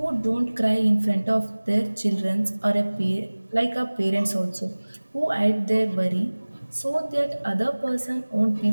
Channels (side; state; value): both; inverted; correlation -1.00